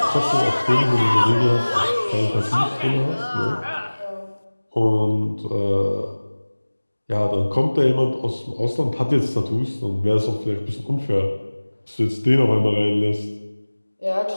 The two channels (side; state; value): both; inverted; correlation -1.00